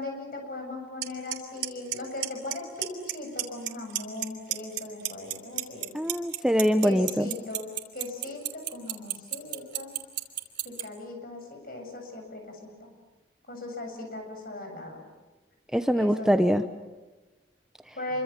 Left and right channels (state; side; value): normal; both; correlation 0.69